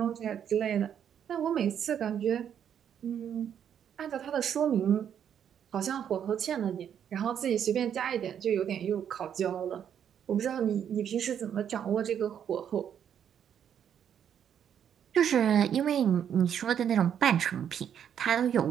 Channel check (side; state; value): left; quieter; 8.9 dB